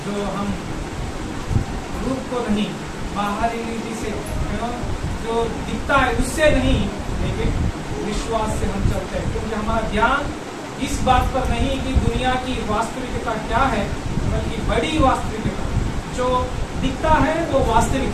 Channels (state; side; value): identical; both; correlation 1.00